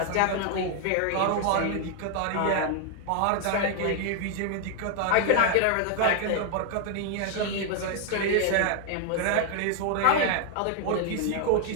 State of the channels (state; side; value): different; both; correlation 0.00